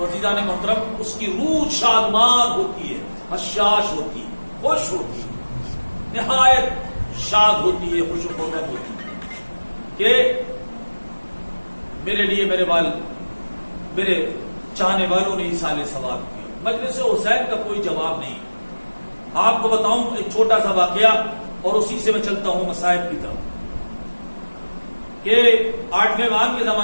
عزیزان محترم اس کی روح شادمان ہوتی ہے، حشاش ہوتی ہے، خوش ہوتی ہے، نہایت شاد ہوتی ہے، خوش و خرم ہوتی ہے کہ میرے لیے میرے چاہنے والوں نے ایصال ثواب کیا۔ مجلس حسین کا کوئی جواب نہیں۔ آپ کو بتاؤں ایک چھوٹا سا واقعہ اور اسی سے میں چلتا ہوں مصائب کی طرف، کہ 8ویں امام کے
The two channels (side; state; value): both; inverted; correlation -1.00